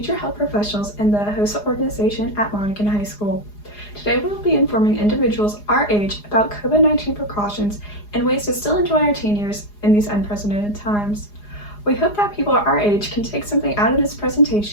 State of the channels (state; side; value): late; right; 4.8 ms